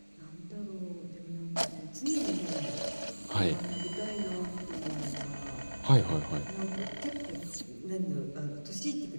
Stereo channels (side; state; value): both; inverted; correlation -1.00